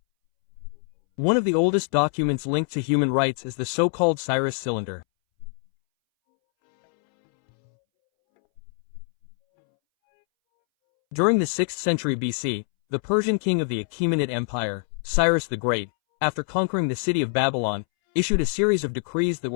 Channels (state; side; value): silent; right; 62 dB below the other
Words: One of the oldest documents linked to human rights is the so-called Cyrus Cylinder. During the 6th century BC, the Persian king of the Achaemenid Empire, Cyrus the Great, after conquering the city of Babylon, issued a series of decrees that